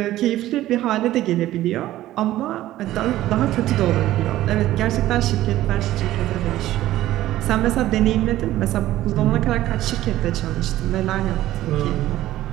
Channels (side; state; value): left; quieter; 14.7 dB